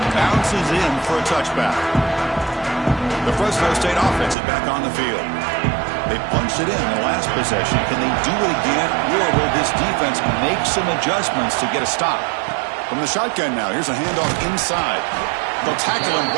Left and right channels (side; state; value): left; drops out; at 4.4 s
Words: bounces in for a touchback. The Fresno State offense is back on the field. They punched it in the last possession. Can they do it again, or will this defense make some adjustments to get a stop? From the shotgun now, here's a handoff inside. They'll tackle him